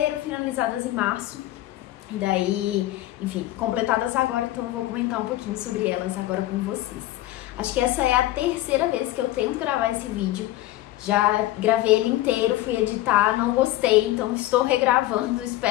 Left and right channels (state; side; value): quieter; right; 15.6 dB